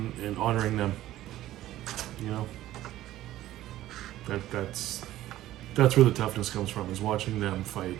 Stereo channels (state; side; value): quieter; left; 14.4 dB